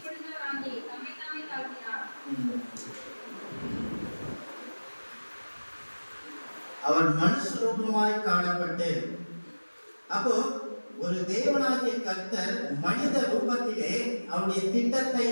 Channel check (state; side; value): inverted; both; correlation -1.00